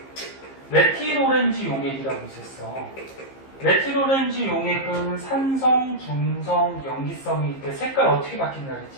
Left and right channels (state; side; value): late; right; 15 ms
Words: 메틸오렌지 용액이라고 있었어. 메틸오렌지 용액은 산성, 중성, 염기성일 때 색깔 어떻게 바뀐다